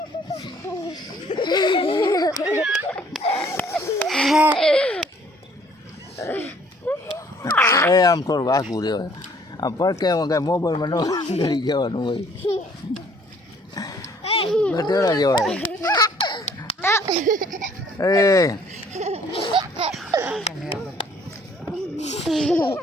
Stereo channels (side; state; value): both; normal; correlation 0.59